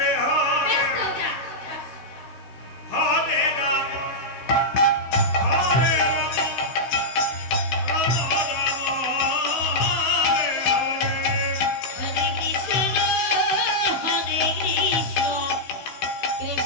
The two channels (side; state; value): right; late; 15 ms